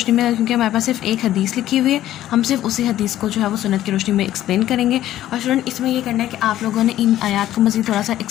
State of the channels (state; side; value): quieter; right; 13.2 dB